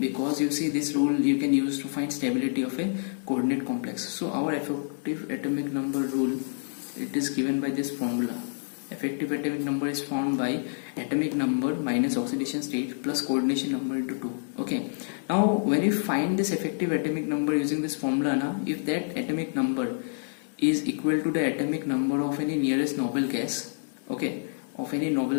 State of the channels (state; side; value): silent; right; digital silence